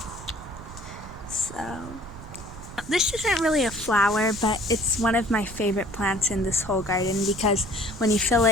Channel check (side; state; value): right; noise; rumble, 14 dB below the sound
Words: So this isn't really a flower, but it's one of my favorite plants in this whole garden because when you feel